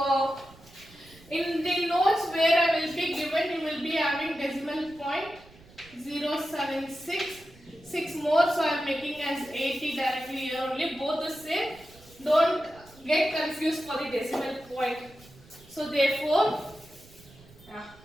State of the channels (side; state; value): right; noise; rumble, 24 dB below the sound